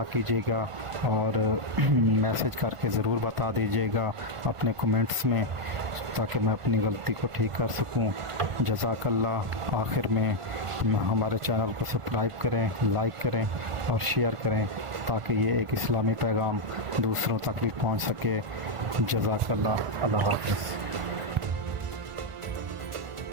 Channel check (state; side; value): late; left; 1.5 ms